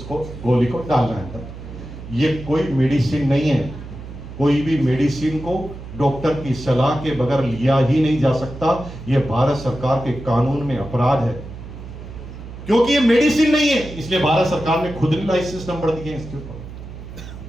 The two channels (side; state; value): right; noise; hum, 13 dB below the sound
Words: गोली को डालना है अंदर। ये कोई मेडिसिन नहीं है, कोई भी मेडिसिन को डॉक्टर की सलाह के बगैर लिया ही नहीं जा सकता। ये भारत सरकार के कानून में अपराध है, क्योंकि ये मेडिसिन नहीं है, इसलिए भारत सरकार ने खुद ने लाइसेंस नंबर दिए इसके